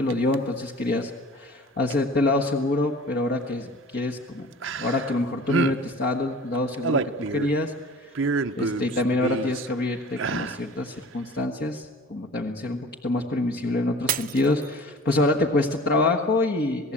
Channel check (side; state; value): both; normal; correlation 0.43